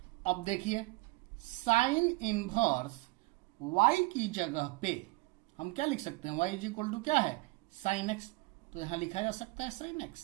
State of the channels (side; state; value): left; quieter; 23.3 dB